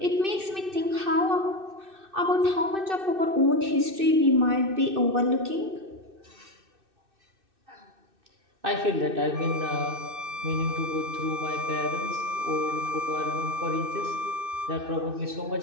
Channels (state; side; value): late; left; 2.6 ms